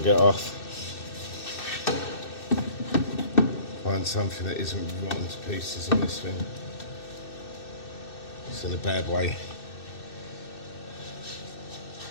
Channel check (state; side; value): late; right; 2.6 ms